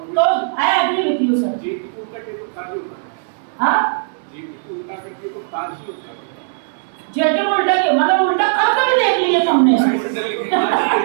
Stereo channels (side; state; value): left; silent; 63 dB below the other